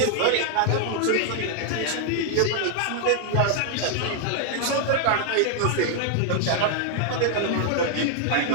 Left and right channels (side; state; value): both; different; correlation 0.00